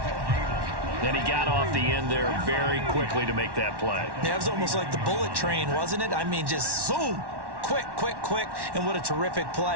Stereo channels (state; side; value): late; left; 1.1 ms